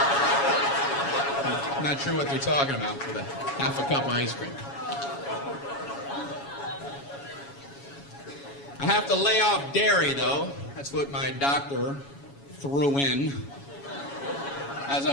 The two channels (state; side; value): late; right; 7.2 ms